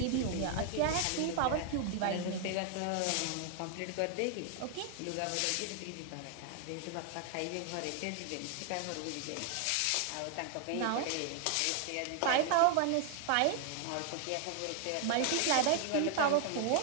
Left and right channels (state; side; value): different; both; correlation 0.00